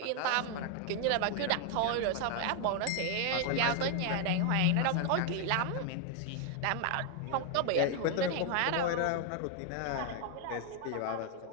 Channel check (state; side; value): different; both; correlation 0.00